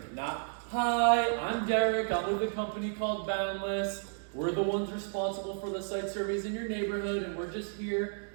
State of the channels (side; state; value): left; silent; digital silence